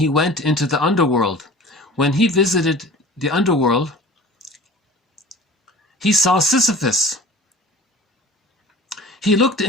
went into the underworld. When he visited the underworld, he saw Sisyphus. He looked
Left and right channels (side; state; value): both; normal; correlation 0.42